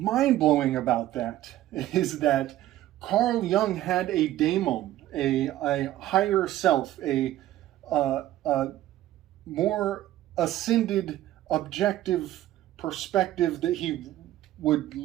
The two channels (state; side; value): quieter; left; 14.1 dB